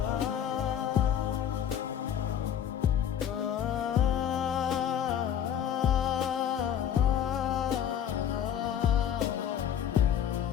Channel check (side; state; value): right; quieter; 9.3 dB